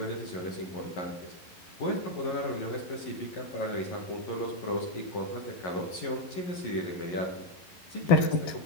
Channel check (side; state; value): right; late; 11 ms